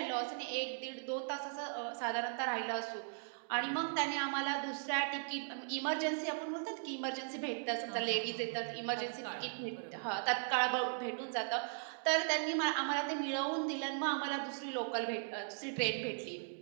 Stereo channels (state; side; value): silent; left; digital silence